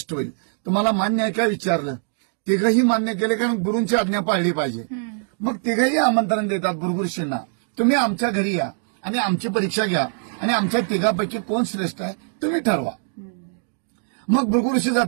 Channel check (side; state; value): left; silent; digital silence